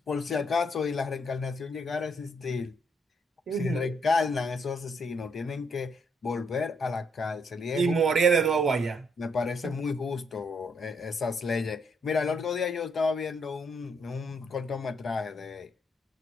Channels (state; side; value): normal; both; correlation 0.72